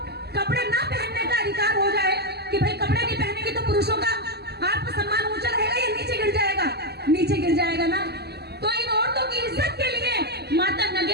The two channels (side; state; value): left; late; 0.47 ms